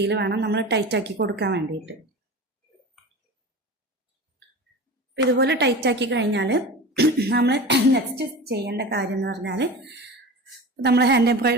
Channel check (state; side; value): normal; both; correlation 0.32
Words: വേണം നമ്മൾ ടൈറ്റാക്കി കൊടുക്കാൻ വേണ്ടിയിട്ട്. ഇതുപോലെ ടൈറ്റാക്കി കഴിഞ്ഞാൽ നമ്മൾ നെക്സ്റ്റ് ചെയ്യേണ്ട കാര്യം എന്ന് പറഞ്ഞാൽ, നമ്മൾ ഹാൻഡ്